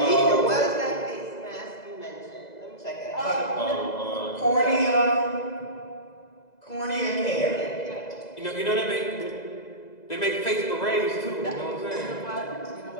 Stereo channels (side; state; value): right; late; 2.0 ms